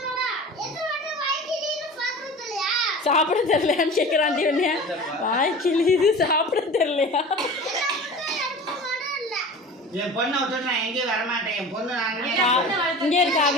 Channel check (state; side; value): normal; both; correlation 0.37